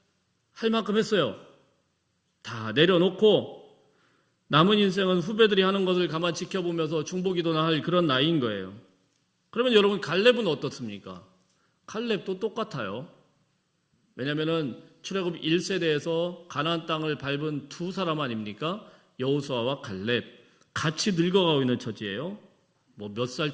할 만큼 했어요. 다 내려놓고 남은 인생은 후배들이 하는 것을 가만 지켜보면서 중보기도나 할 그런 나이인 거예요. 그러면 여러분, 갈렙은 어떻습니까? 갈렙도 똑같아요. 왜냐하면 출애굽 1세대에서 가나안 땅을 밟은 두 사람 아닙니까? 여호수아와 갈렙. 같이 늙어가고 있는 처지예요. 뭐 몇 살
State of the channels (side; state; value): both; identical; correlation 1.00